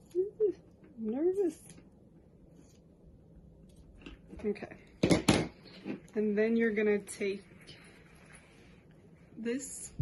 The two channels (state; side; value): identical; both; correlation 1.00